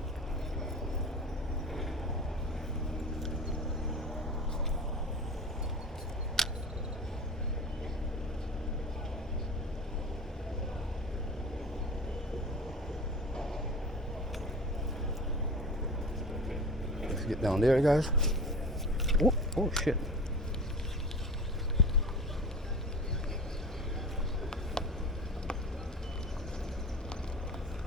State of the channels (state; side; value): normal; both; correlation 0.34